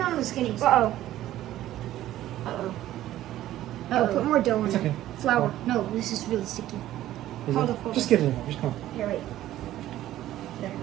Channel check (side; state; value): left; quieter; 13.7 dB